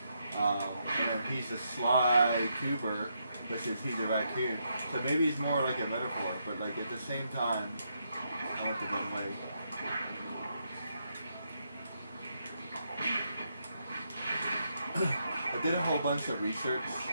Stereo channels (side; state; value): both; inverted; correlation -0.80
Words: And he's a Sly Cooper, which is he's a raccoon. So maybe it's more like a metaphor, but like at the same time, I went the wrong way. did a whole bunch of research